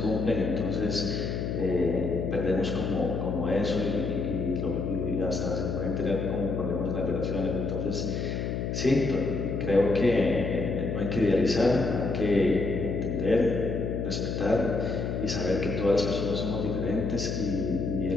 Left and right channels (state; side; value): noise; left; hum, 2 dB below the sound